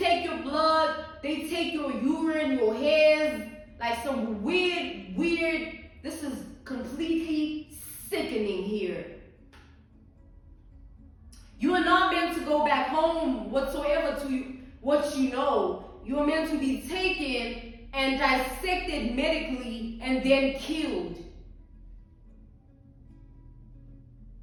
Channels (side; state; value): both; identical; correlation 1.00